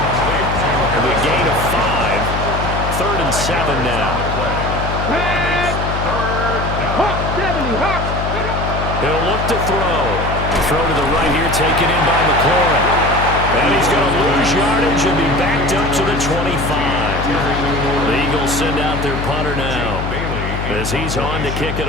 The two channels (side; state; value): left; noise; hum, 4 dB below the sound